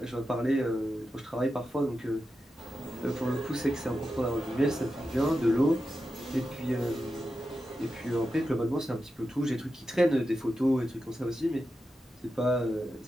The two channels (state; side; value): normal; both; correlation 0.90